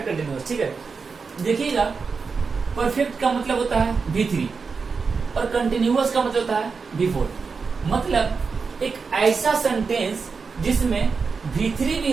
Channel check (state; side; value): quieter; left; 5.0 dB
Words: continuous. ठीक है, देखिएगा परफेक्ट का मतलब होता है V3 और कंटिन्यूअस का मतलब होता है V4। मतलब एक ऐसा सेंटेंस जिसमें V3